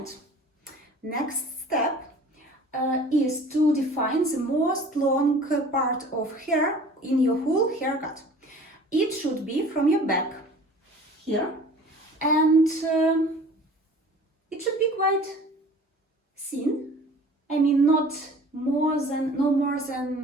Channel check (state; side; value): normal; both; correlation 0.46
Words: next step is to define the most long part of hair in your whole haircut. It should be from your back here, and it should be quite thin. I mean, no more